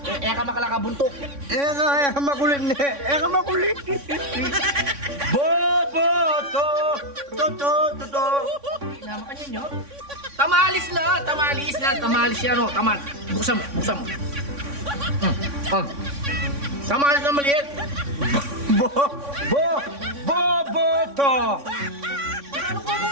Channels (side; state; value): left; late; 3.6 ms